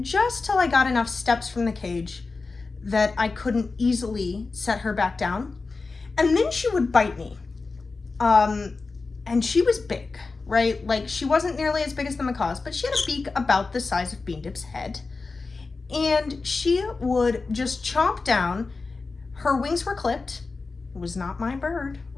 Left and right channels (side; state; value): right; quieter; 4.0 dB